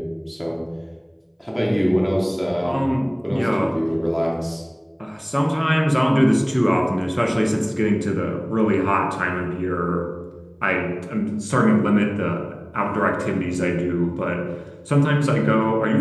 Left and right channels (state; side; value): identical; both; correlation 1.00